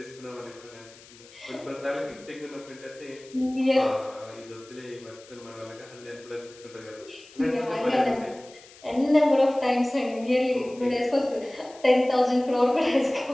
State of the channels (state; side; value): noise; left; hiss, 22 dB below the sound